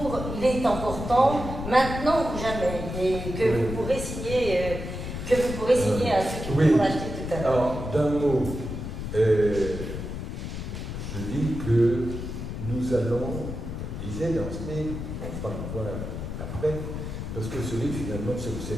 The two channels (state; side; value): noise; left; rumble, 6 dB below the sound